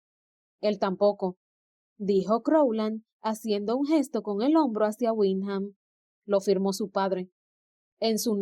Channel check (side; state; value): both; identical; correlation 1.00